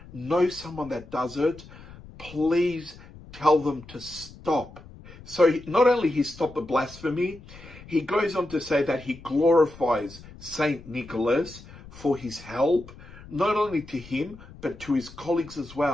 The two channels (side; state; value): left; noise; rumble, 19 dB below the sound